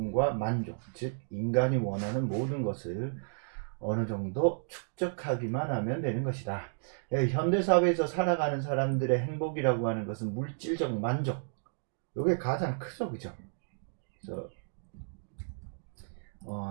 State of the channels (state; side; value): silent; left; digital silence